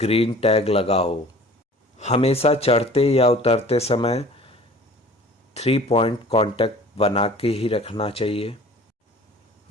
टैग लगा हो। हमेशा चढ़ते या उतरते समय 3 पॉइंट कांटेक्ट बना के ही रखना चाहिए।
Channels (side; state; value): both; normal; correlation 0.46